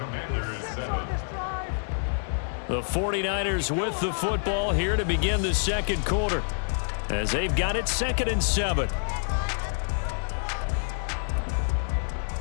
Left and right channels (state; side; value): silent; right; 60 dB below the other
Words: is 7. The 49ers with the football here to begin the second quarter as they've got it 2nd and 7.